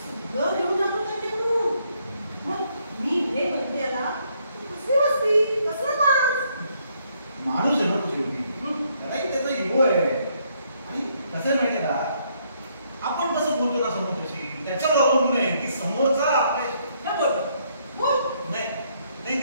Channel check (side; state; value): both; inverted; correlation -0.71